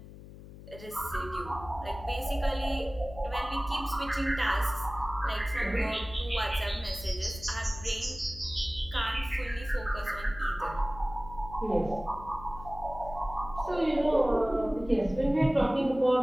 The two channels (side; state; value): left; noise; hum, 16 dB below the sound